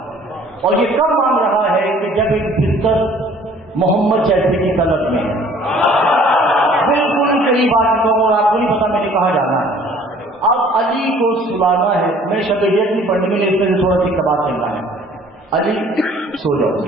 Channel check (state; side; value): normal; both; correlation 0.54